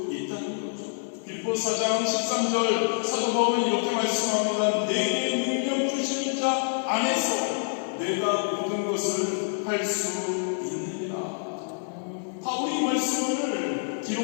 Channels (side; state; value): right; silent; 56 dB below the other